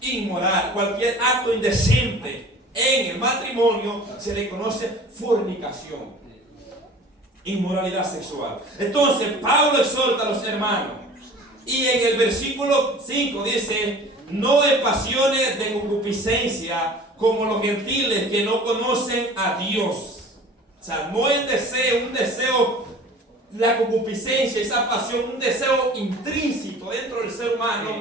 inmoral, cualquier acto indecente en el matrimonio se le conoce fornicación, inmoralidad sexual. Entonces, Pablo exhorta a los hermanos y en el versículo 5 dice: no en pasiones de concupiscencia como los gentiles que no conocen a Dios. O sea, no el deseo, un deseo, la concupiscencia, esa pasión, un deseo intrínseco dentro del ser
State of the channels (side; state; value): both; normal; correlation 0.44